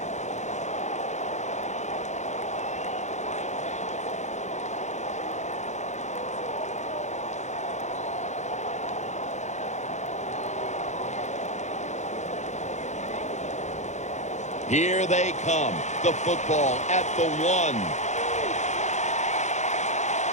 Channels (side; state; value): right; late; 0.34 ms